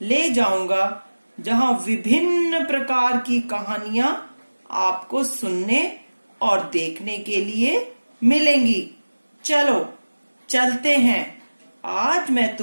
जाऊंगा जहां विभिन्न प्रकार की कहानियां आपको सुनने और देखने के लिए मिलेंगी। चलो चलते हैं। आज मैं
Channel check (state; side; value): inverted; both; correlation -1.00